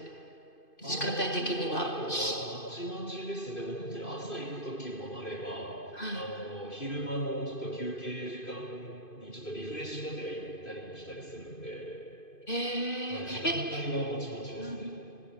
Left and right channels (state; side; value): late; right; 2.5 ms